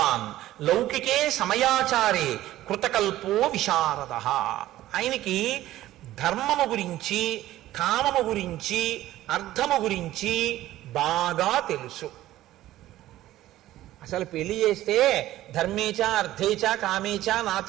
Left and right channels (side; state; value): left; quieter; 14.8 dB